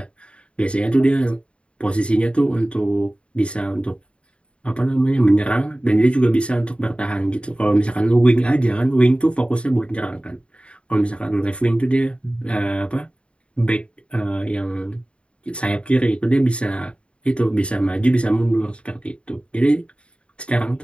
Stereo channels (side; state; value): right; late; 0.057 ms